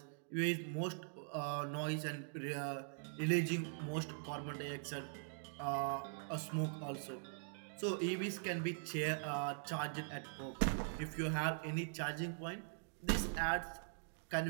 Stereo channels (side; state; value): left; silent; digital silence